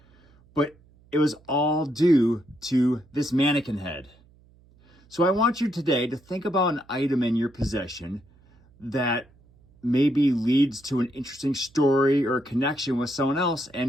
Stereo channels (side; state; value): right; noise; hum, 29 dB below the sound